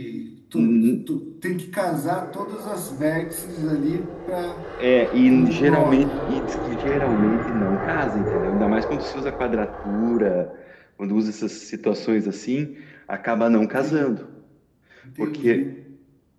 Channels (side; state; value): both; identical; correlation 1.00